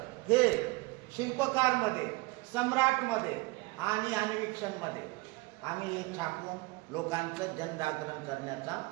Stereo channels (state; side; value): quieter; left; 24.2 dB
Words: हे शिल्पकारमध्ये, सम्राटमध्ये आणि अन्वेक्षणमध्ये आम्ही छापून लोकांचं जनजागरण करण्याचा